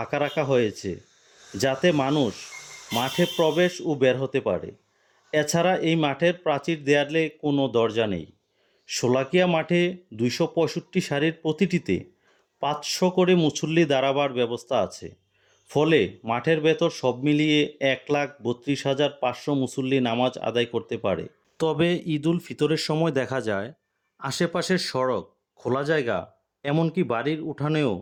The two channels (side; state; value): both; identical; correlation 1.00